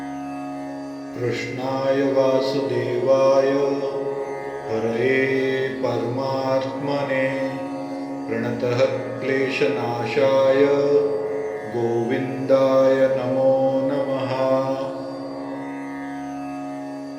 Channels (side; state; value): both; identical; correlation 1.00